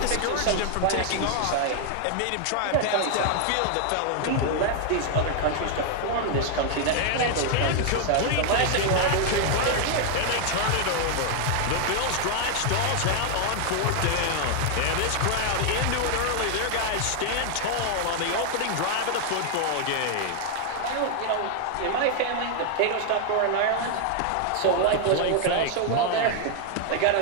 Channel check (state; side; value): different; both; correlation 0.00